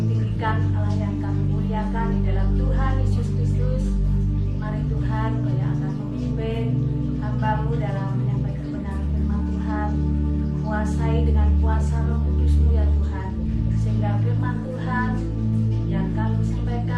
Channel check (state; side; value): identical; both; correlation 1.00